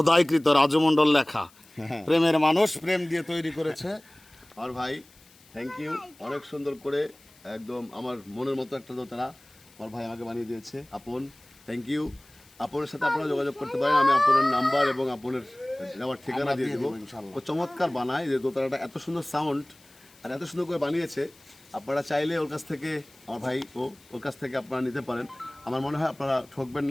রাজু মণ্ডল লেখা, প্রেমের মানুষ, প্রেম দিয়ে তৈরি করেছে। আর ভাই থ্যাংক ইউ, অনেক সুন্দর করে একদম আমার মনের মতো একটা দোতারা আমার ভাই আমাকে বানিয়ে দিয়েছে। আপন থ্যাংক ইউ। আপনের সাথে আপনারা যোগাযোগ করতে পারেন, আমি আপনের নাম্বার এবং আপনের নেওয়ার ঠিকানা দিয়ে দেবো। ও চমৎকার বানায়, যে দোতারাটা এত সুন্দর সাউন্ড আর এত সুন্দর করে বানিয়েছে। আপনারা চাইলে ওর কাছ থেকে, আমার ভাই ওর কাছ থেকে আপনারা নিতে পারেন। আমার মনে হয় আপনারা ঠকবেন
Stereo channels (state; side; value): noise; left; hiss, 27 dB below the sound